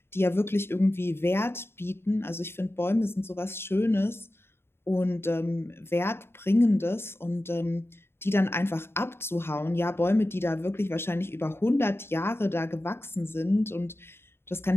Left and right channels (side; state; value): right; late; 0.11 ms